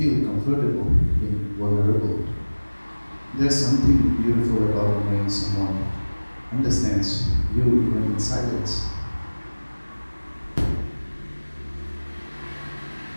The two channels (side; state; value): both; inverted; correlation -1.00